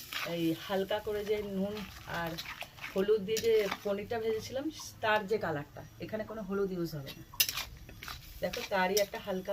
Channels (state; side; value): identical; both; correlation 1.00